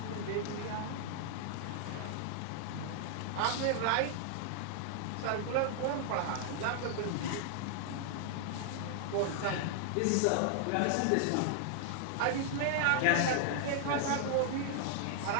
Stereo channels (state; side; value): different; both; correlation -0.01